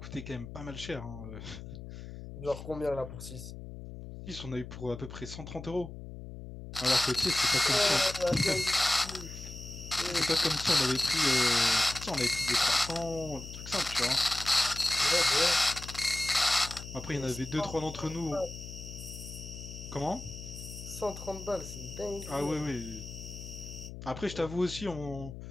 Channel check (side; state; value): left; noise; hum, 11 dB below the sound